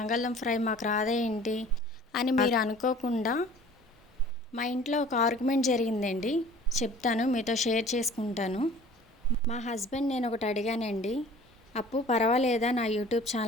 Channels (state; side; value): normal; both; correlation 0.47